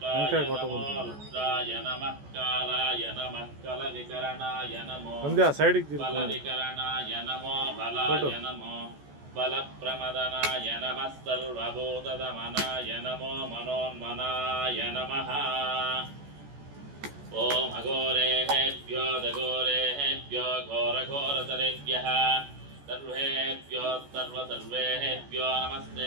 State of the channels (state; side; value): late; left; 14 ms